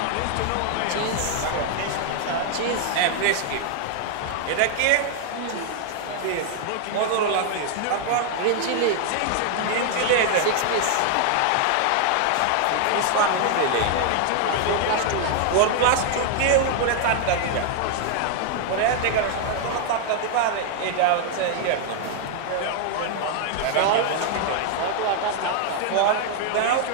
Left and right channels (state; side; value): different; both; correlation 0.00